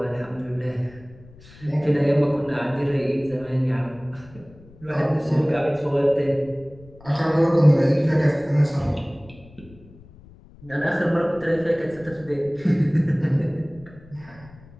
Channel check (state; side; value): noise; left; rumble, 23 dB below the sound